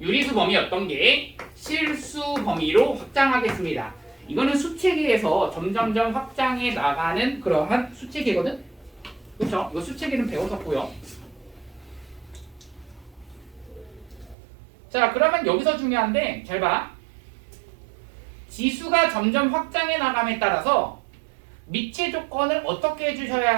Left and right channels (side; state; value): left; drops out; at 14.4 s